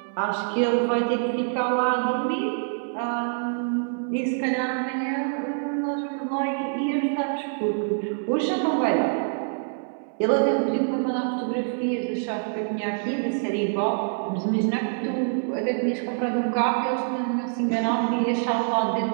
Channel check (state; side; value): silent; left; 60 dB below the other